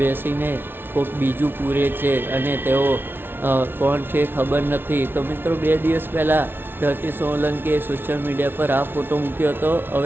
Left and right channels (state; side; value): late; left; 0.10 ms